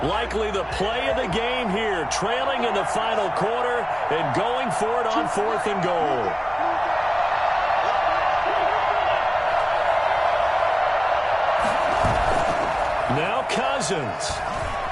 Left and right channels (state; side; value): identical; both; correlation 1.00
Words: Likely the play of the game here, trailing in the final quarter and going for it on fourth and goal. Now Cousins.